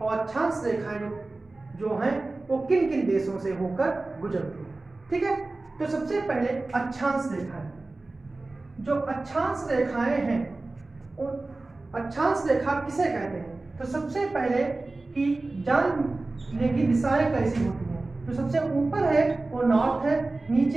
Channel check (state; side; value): quieter; left; 3.2 dB